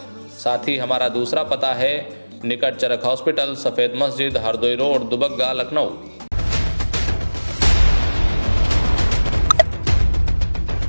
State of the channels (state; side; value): inverted; both; correlation -1.00